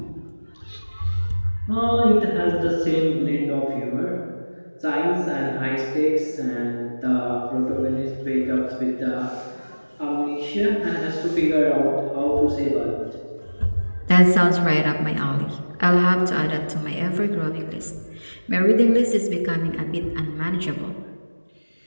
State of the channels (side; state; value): both; inverted; correlation -1.00